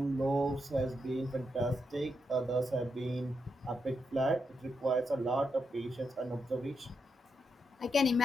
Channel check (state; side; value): normal; both; correlation 0.83